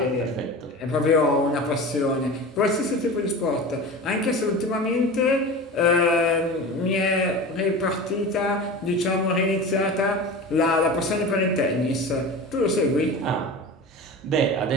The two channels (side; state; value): both; normal; correlation 0.32